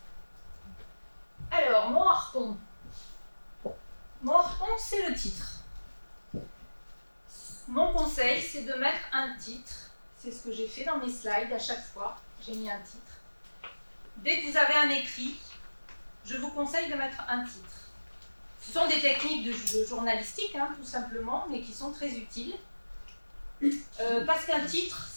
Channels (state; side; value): inverted; both; correlation -1.00